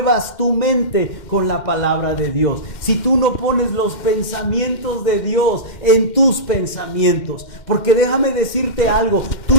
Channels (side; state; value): right; late; 2.1 ms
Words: tu mente con la palabra de Dios. Si tú no pones los pensamientos de Dios en tus pensamientos. Porque déjame decirte algo,